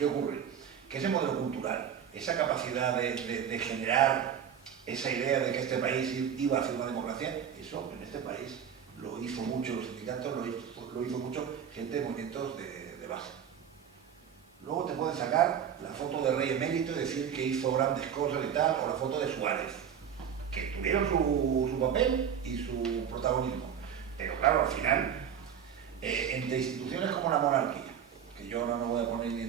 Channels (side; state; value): left; quieter; 8.3 dB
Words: ocurre? Que ese modelo cultural, esa capacidad de generar esa idea de que este país iba hacia una democracia, eso en este país lo hizo mucho los sindicatos, lo hizo mucho gente de movimientos de base. Luego te pueden sacar la foto de Rey Emérito y decir que hizo grandes cosas y tal, o la foto de Suárez, que tuvieron su papel y su protagonismo. Pero claro, al final, entre instituciones como la monarquía, que yo no me voy a poner ni